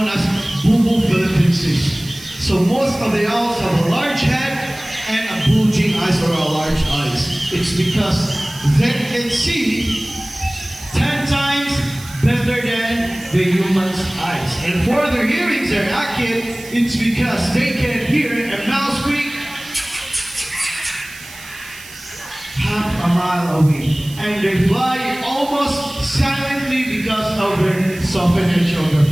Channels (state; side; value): noise; right; hiss, 17 dB below the sound